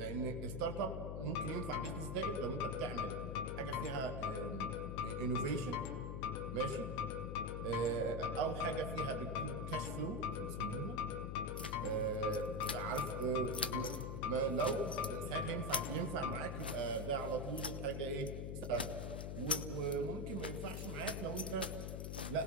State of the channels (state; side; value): noise; left; hum, 3 dB below the sound